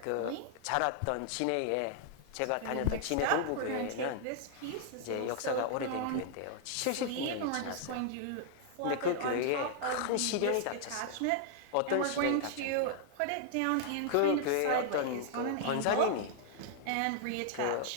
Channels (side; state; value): both; different; correlation -0.01